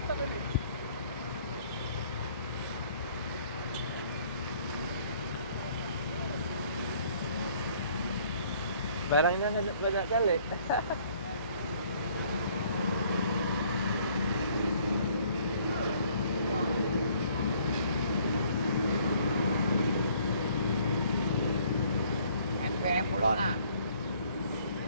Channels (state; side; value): inverted; both; correlation -0.60